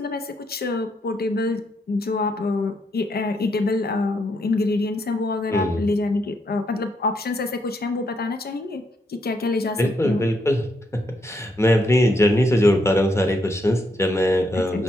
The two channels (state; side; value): normal; both; correlation 0.76